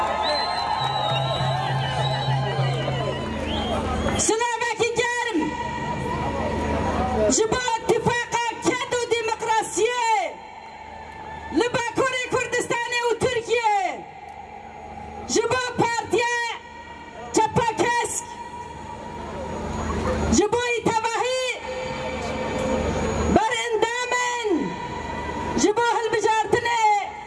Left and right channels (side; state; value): both; identical; correlation 1.00